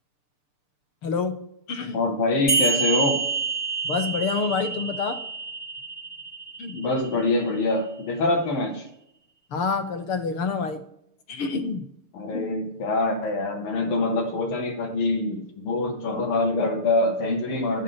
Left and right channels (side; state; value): right; late; 6.8 ms